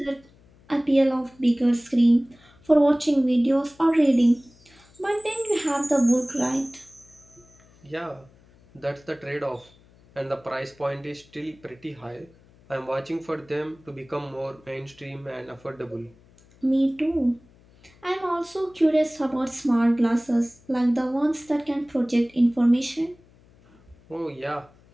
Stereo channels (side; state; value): left; noise; hum, 28 dB below the sound